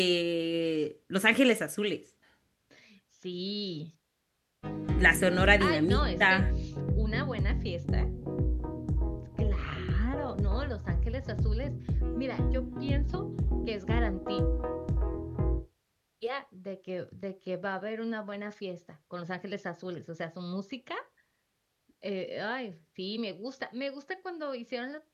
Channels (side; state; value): both; identical; correlation 1.00